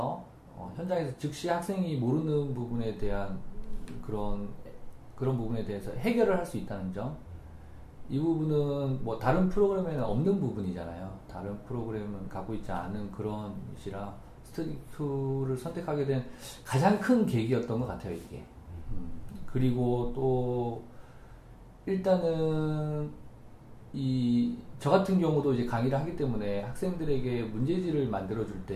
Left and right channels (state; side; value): identical; both; correlation 1.00